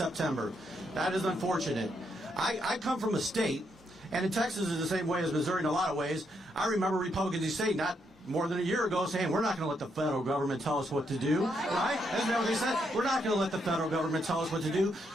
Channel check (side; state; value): both; normal; correlation 0.77